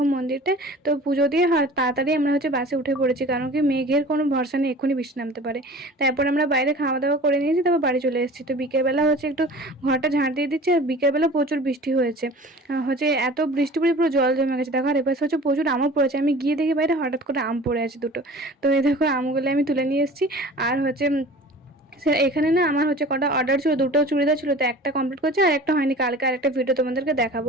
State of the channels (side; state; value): both; normal; correlation 0.42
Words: মন্দিরটা। তো পুজো দিয়ে তাড়াতাড়ি আমরা হচ্ছে বাসে উঠে পড়েছি, কারণ কি মেঘের কোনো ভরসা নেই, এক্ষুনি বৃষ্টি নামতে পারে। তারপর আমরা বাইরে খাওয়া দাওয়া করে নিয়েছি, তারপর বাড়ি চলে এসেছি। তো বিকেলবেলা হচ্ছে একটু ঘরটা ঝাঁট দিয়ে দিচ্ছে, আর বিকেলবেলা প্রচুর বৃষ্টি হয়েছে। হচ্ছে এত বৃষ্টি পড়ে পুরো জল জমে গেছে। দেখো আর এপাশে হচ্ছে প্রচুর আমও পড়েছে। আমি গিয়ে দেখি বাইরে হঠাৎ করে আম পড়ে আছে দুটো। তো এই দেখো আমগুলো আমি তুলে নিয়ে এসেছি। আর হচ্ছে এখানে না আমার হচ্ছে কটা অর্ডার ছিল, দুটো চুড়িদার ছিল, তো একটা কমপ্লিট করছে আর একটা হয়নি। কালকে আর একটা ভিডিও তোমাদেরকে